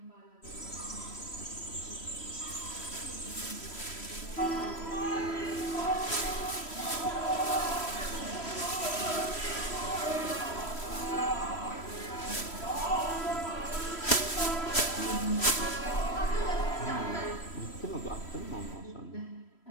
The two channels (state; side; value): late; right; 3.1 ms